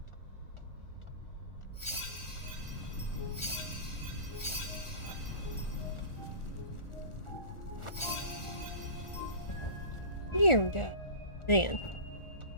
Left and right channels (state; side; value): late; right; 1.4 ms